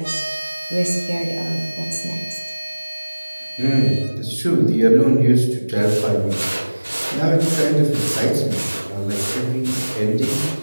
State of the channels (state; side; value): inverted; both; correlation -1.00